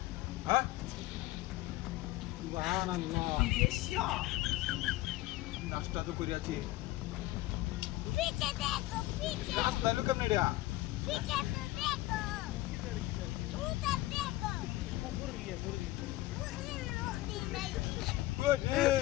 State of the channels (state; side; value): quieter; right; 17.7 dB